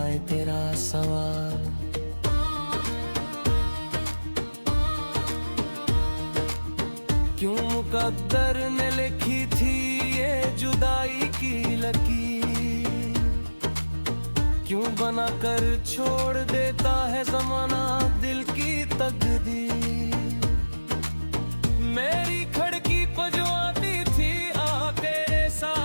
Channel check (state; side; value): inverted; both; correlation -1.00